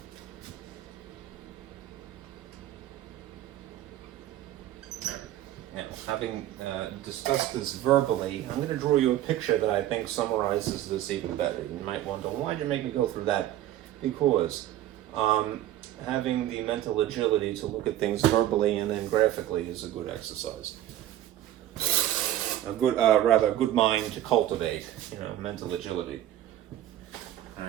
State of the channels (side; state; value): left; quieter; 12.9 dB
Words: Now, having discussed this verbally, I'm going to draw you a picture that I think summarizes this even better. You might wonder, why did you make me go through that? Because having the mental agility to look at things verbally and then graphically is a good exercise. A good mind to cultivate, you know, mental agility. All